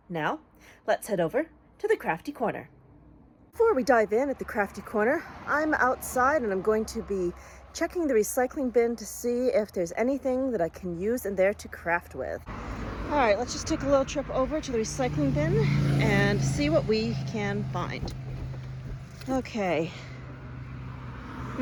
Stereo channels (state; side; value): identical; both; correlation 1.00